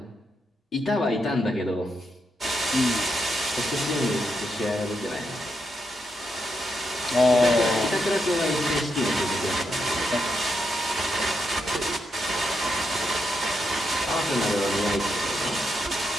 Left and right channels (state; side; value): normal; both; correlation 0.82